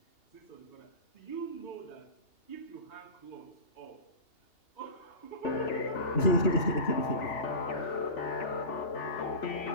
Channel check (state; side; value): late; right; 2.9 ms